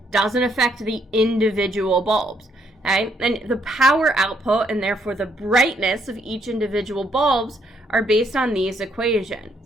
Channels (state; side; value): normal; both; correlation 0.72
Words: doesn't affect the individual bulbs. Okay? And the power output and therefore the brightness of each individual bulbs are based on these